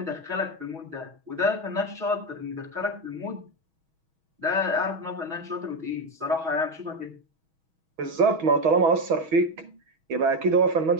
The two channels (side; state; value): left; late; 6.2 ms